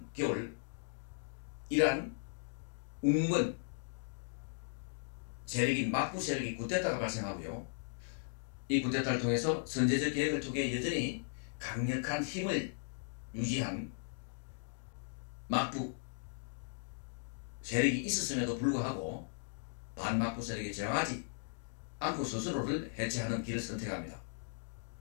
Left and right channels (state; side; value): silent; right; digital silence